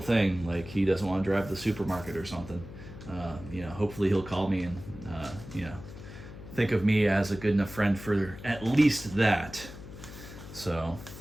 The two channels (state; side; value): noise; left; hum, 14 dB below the sound